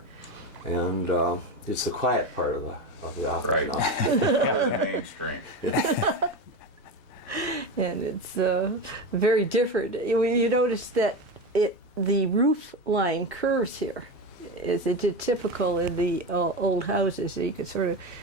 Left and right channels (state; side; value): normal; both; correlation 0.21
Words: and it's the quiet part of the office Right. now. Mainstream. and it's very different. You notice that the roof line curves here, is typical in the old houses. So you could sort